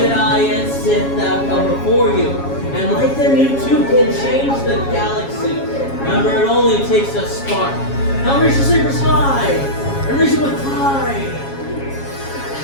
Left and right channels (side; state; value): right; late; 7.3 ms